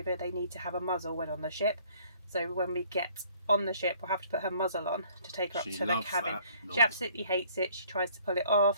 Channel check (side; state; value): both; inverted; correlation -0.58